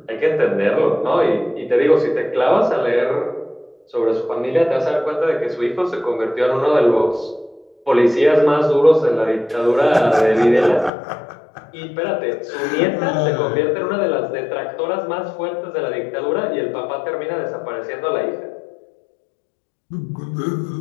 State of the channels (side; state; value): right; drops out; at 10.9 s